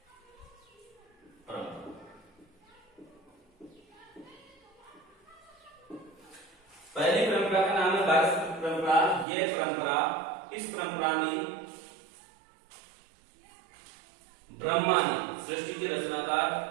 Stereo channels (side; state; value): left; drops out; at 9.2 s